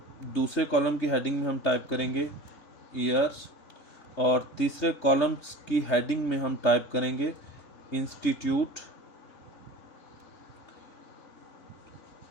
दूसरे कॉलम की हेडिंग में हम टाइप करेंगे ईयर्स, और तीसरे कॉलम्स की हेडिंग में हम टाइप करेंगे इंस्टीट्यूट,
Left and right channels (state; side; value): late; right; 3.3 ms